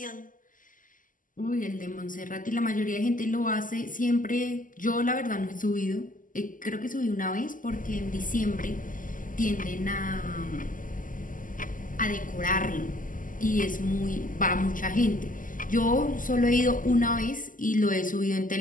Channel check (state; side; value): late; right; 0.38 ms